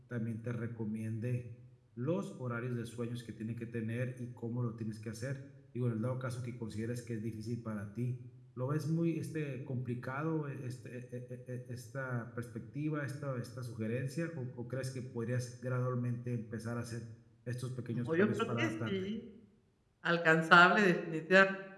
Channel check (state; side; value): identical; both; correlation 1.00